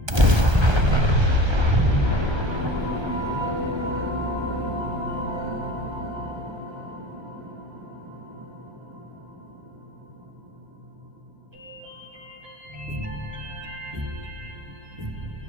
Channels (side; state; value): left; late; 1.3 ms